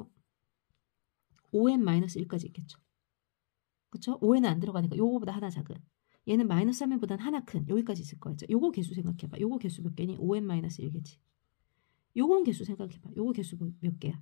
마이너스 1까지 있겠죠. 그쵸? 5n은 안 들어가니까 요거보다 하나 작은 얘는 마이너스 3n보다는 하나 큰 여기까지 있을 거예요. 요거 개수 생각해봐. 요거 개수 몇 개니? 5n 마이너스 1개지. 요건 개수 생각해봐. 요거 개수 몇 개야?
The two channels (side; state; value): right; silent; 55 dB below the other